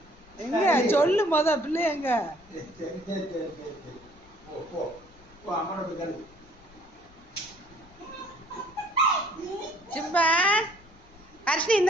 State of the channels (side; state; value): left; noise; rumble, 25 dB below the sound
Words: எங்க சொல்லு பிள்ளை எங்க? சிம்பா ஹர்ஷினி